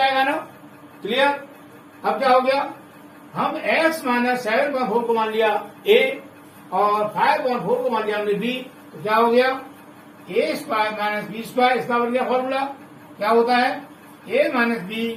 ना। क्लियर। अब क्या हो गया, हम x माइनस 7/4 को मान लिया a और 5/4 को मान लिया हमने b, तो क्या हो गया a square minus b square. इसका बन गया फॉर्मूला क्या होता है a minus b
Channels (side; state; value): both; identical; correlation 1.00